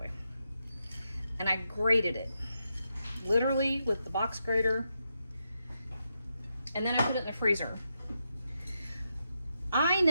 And I grated it, literally with the box grater, and then I put it in the freezer. I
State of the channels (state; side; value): inverted; both; correlation -0.84